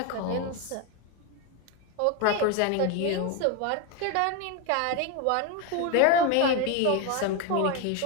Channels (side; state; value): both; different; correlation 0.02